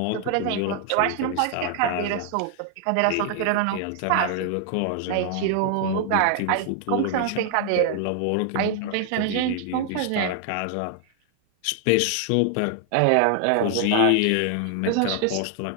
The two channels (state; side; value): different; both; correlation 0.00